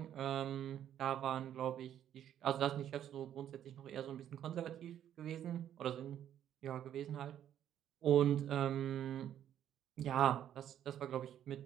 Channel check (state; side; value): quieter; left; 10.5 dB